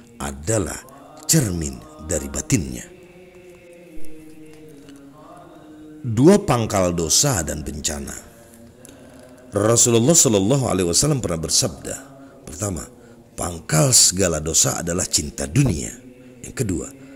adalah cermin dari batinnya. Dua pangkal dosa dan bencana. Rasulullah Shallallahu Alaihi Wasallam pernah bersabda, pertama, pangkal segala dosa adalah cinta dunia. Yang kedua,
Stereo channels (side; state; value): both; identical; correlation 1.00